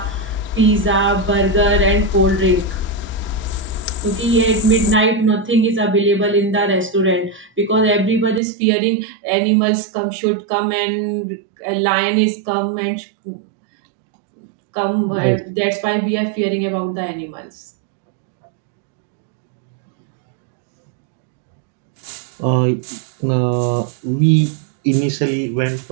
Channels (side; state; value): left; drops out; at 8.4 s